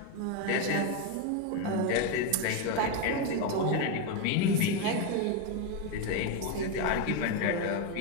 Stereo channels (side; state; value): both; different; correlation 0.02